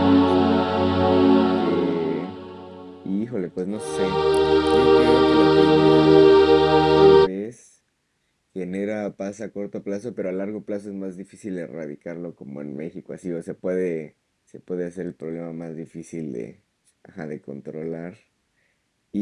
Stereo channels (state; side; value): identical; both; correlation 1.00